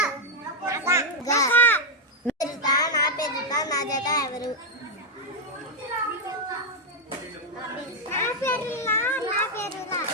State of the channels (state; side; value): normal; both; correlation 0.02